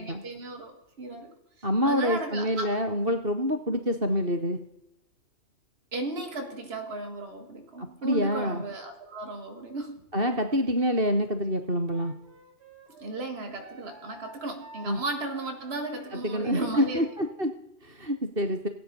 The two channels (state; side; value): late; left; 3.0 ms